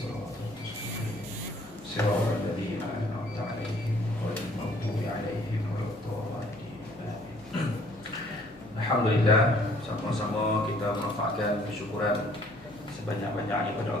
mustaqim. Siratal ladzina an'amta 'alaihim ghairil maghdubi 'alaihim waladdallin. Alhamdulillah, sama-sama kita menampakkan kesyukuran sebanyak-banyaknya kepada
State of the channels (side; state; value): left; noise; hum, 25 dB below the sound